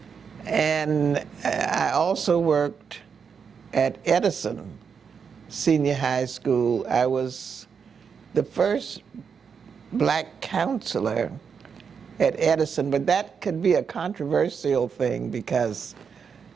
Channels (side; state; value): left; quieter; 6.4 dB